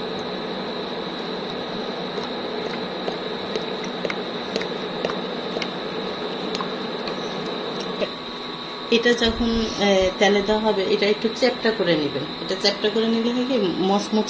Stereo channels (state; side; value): identical; both; correlation 1.00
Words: এটা যখন তেলে দেওয়া হবে, এটা একটু চ্যাপটা করে নেবেন। এটা চ্যাপটা করে নিলে হয় কি,